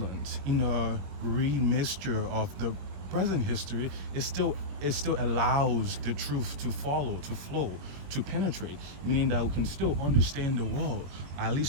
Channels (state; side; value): late; left; 21 ms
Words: in a remixture of the present history, it still allows the truth to follow, to flow, to penetrate, meaning that we can still understand the world, at